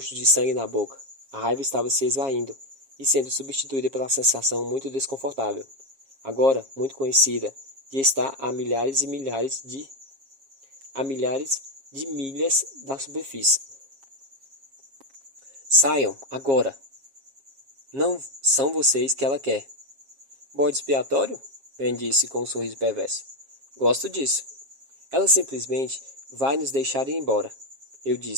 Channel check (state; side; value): late; left; 7.4 ms